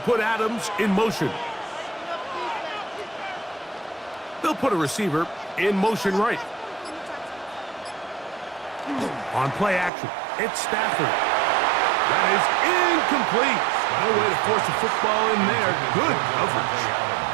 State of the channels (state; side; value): drops out; left; at 9.9 s